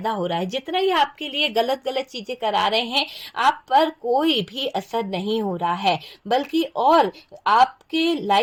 हो रहा है। जितना ये आपके लिए गलत गलत चीजें करा रहे हैं, आप पर कोई भी असर नहीं हो रहा है, बल्कि और आपके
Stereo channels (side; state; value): both; identical; correlation 1.00